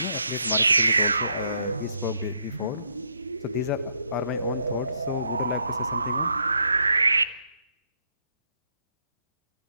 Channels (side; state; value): both; inverted; correlation -0.74